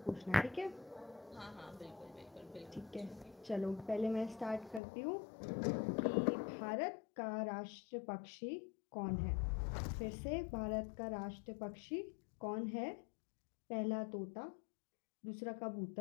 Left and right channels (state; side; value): drops out; right; at 4.8 s